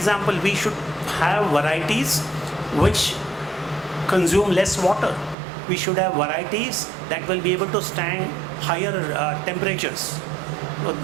we should have varieties which consume less water. We should have varieties that will be able to stand higher temperatures.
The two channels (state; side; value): drops out; left; at 5.4 s